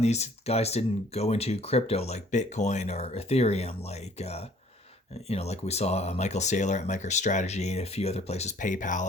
guys didn't go into crypto like Bitcoin or Ethereum, like you know, like we saw Michael Saylor at MicroStrategy and a few other places,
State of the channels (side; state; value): both; normal; correlation 0.57